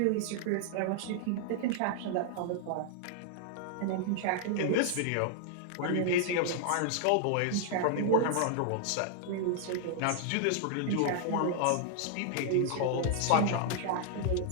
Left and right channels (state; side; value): different; both; correlation 0.00